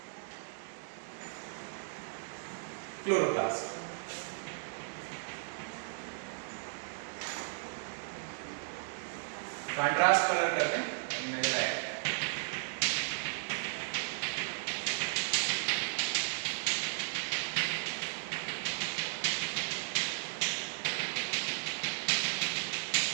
क्लोरोप्लास्ट। कंट्रास्ट कलर करते हैं, नजर आएगा।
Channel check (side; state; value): left; silent; digital silence